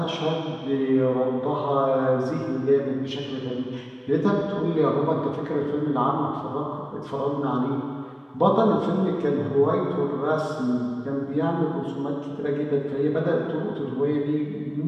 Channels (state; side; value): identical; both; correlation 1.00